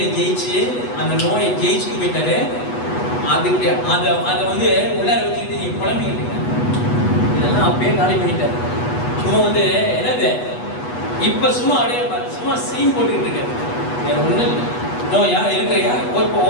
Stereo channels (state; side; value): late; right; 8.2 ms